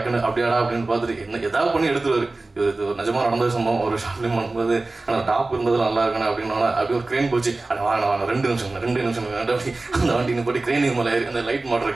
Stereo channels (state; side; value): quieter; left; 3.2 dB